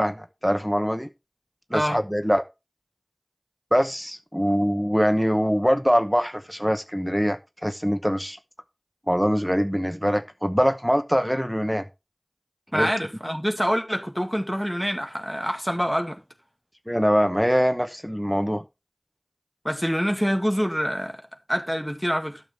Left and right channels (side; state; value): both; identical; correlation 1.00